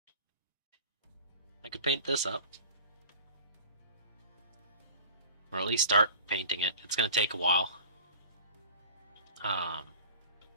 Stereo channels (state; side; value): inverted; both; correlation -0.41